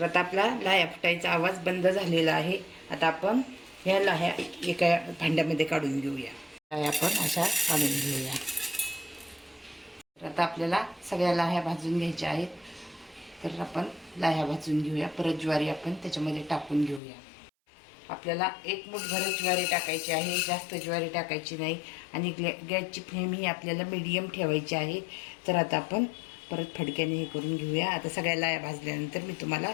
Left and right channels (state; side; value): drops out; right; at 17.0 s